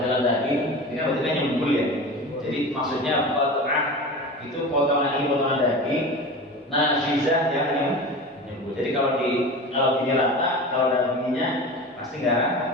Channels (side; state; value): both; normal; correlation 0.31